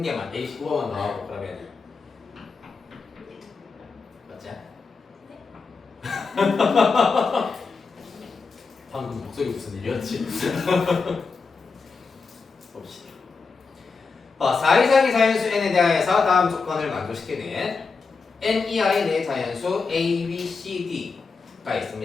개만 119번만 나오고 그러면 맞지? 방금 목소리 무슨 일이었지? 봅시다. 4 이상의 자연수 n에 대하여서 다음 조건을 만족시키는 n 이하의 네 자연수 a, b, c, d가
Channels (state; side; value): quieter; right; 4.6 dB